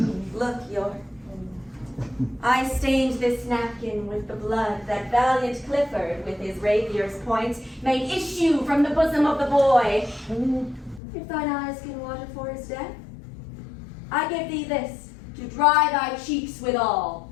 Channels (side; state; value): right; drops out; at 11.0 s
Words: Look, York. I stained this napkin with the blood that valiant Clifford, with his rapier's point, made issue from the bosom of the boy. If thine eyes can water for his death, I give thee this to dry thy cheeks withal.